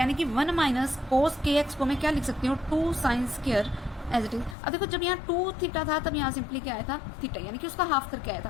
कि 1 माइनस कोस के एक्स को मैं क्या लिख सकती हूँ, 2 sine square as it is. अब देखो जब यहाँ 2 थीटा था तब यहाँ सिंपली क्या आया था, थीटा, यानी कि उसका हाफ करके आया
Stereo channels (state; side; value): drops out; right; at 4.5 s